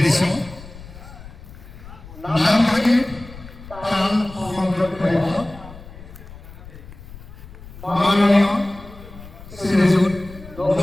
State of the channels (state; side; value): noise; left; rumble, 16 dB below the sound